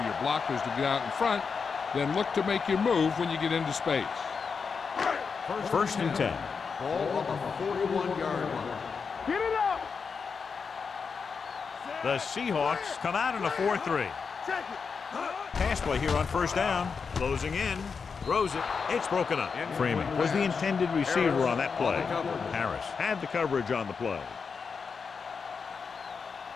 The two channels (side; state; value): right; quieter; 5.5 dB